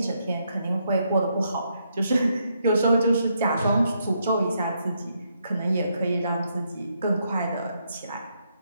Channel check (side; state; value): both; inverted; correlation -0.77